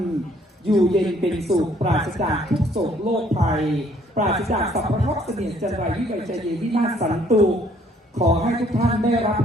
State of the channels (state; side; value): normal; both; correlation 0.62